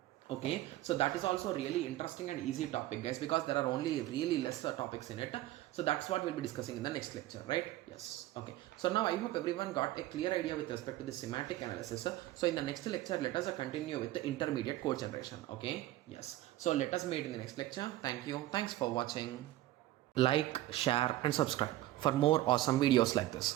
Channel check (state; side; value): quieter; left; 15.6 dB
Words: Okay, so that is also really interesting and easy topic, guys, because there are only really less topics in it. So that's what we'll be discussing in the next lecture, right? Yes. Okay, so now I hope everyone got a clear idea with respect to the semantic analysis. So in the next lecture, let us continue with the intermediate code generation. Okay, yes. So let us meet in the next lecture. Thank you. Thanks for watching. Like, share and subscribe for more awesome videos like